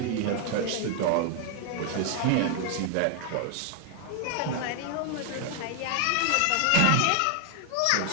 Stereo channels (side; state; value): both; different; correlation 0.00